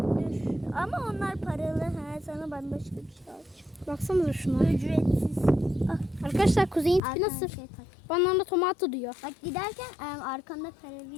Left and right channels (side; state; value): right; drops out; at 7.0 s